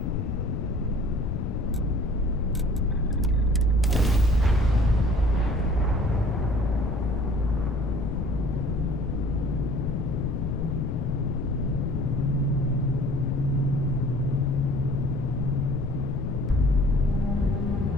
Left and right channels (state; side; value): noise; left; rumble, 1 dB below the sound